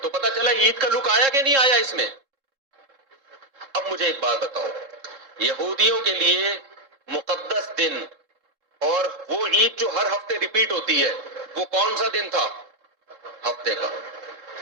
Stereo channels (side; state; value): left; late; 3.7 ms